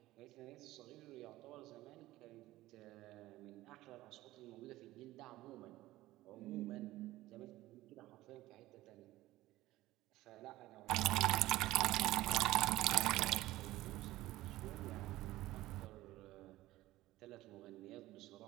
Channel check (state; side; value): quieter; left; 16.8 dB